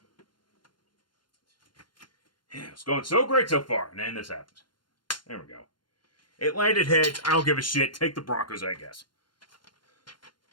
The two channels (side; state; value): right; late; 0.72 ms